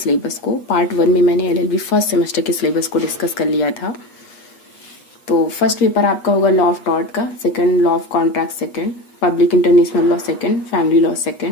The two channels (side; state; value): right; late; 8.2 ms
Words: को। पार्ट 1 में मैंने LLB फर्स्ट सेमेस्टर के सिलेबस को डिस्कस कर लिया था। तो फर्स्ट पेपर आपका होगा लॉ ऑफ टॉर्ट का, second law of contract second, public international law second, family law